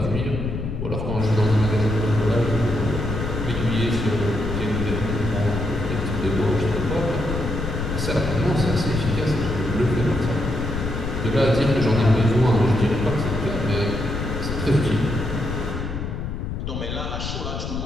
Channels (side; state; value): left; noise; rumble, 4 dB below the sound